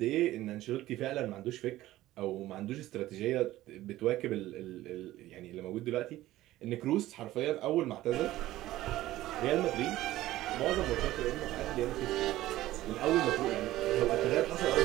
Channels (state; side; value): quieter; left; 15.6 dB